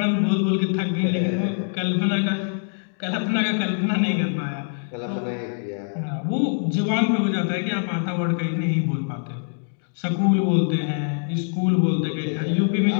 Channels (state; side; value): silent; right; digital silence